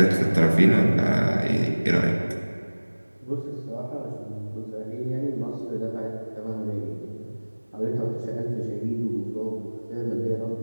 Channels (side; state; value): both; inverted; correlation -1.00